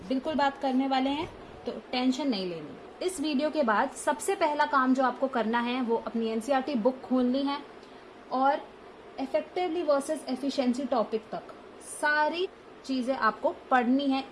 बिल्कुल बात करने वाले हैं, तो टेंशन नहीं लेनी। इस वीडियो के बाद सबसे पहला काम जो आपको करना है वो अपनी एनसीईआरटी बुक खोलनी है और इफेक्टिवली वर्सेस एफिशिएंसी टॉपिक तक सारी चीजें आपको पढ़नी है,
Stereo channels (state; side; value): identical; both; correlation 1.00